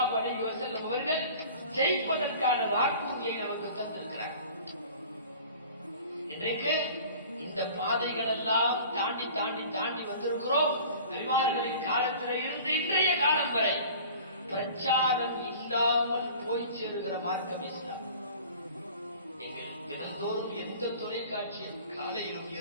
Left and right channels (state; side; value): inverted; both; correlation -0.44